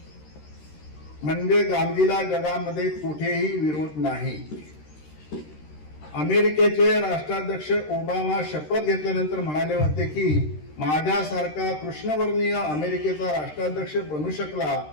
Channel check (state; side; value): late; right; 13 ms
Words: म्हणजे गांधीला जगामध्ये कुठेही विरोध नाही. अमेरिकेचे राष्ट्राध्यक्ष ओबामा शपथ घेतल्यानंतर म्हणाले होते की माझ्यासारखा कृष्णवर्णीय अमेरिकेचा राष्ट्राध्यक्ष बनू शकला